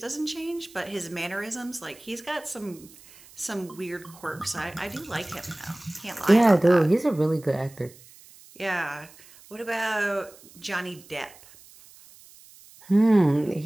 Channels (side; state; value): right; noise; hiss, 23 dB below the sound